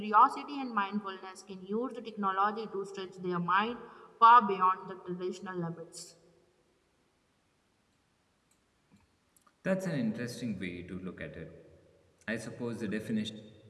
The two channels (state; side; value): identical; both; correlation 1.00